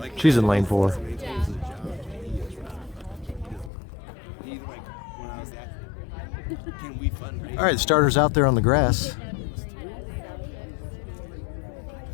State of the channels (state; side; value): drops out; right; at 3.7 s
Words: She's in lane 4. All right, the starter's out there on the grass. You